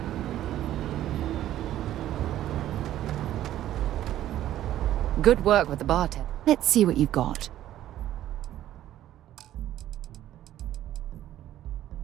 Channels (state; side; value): quieter; left; 12.8 dB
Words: Good work with the bartender. Let's see what you've got.